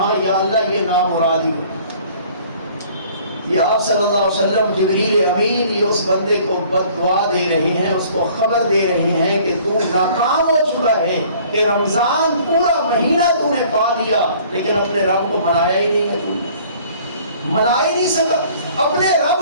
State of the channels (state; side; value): inverted; both; correlation -0.54